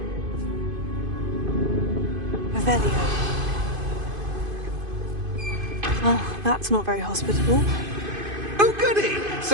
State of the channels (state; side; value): late; left; 2.5 ms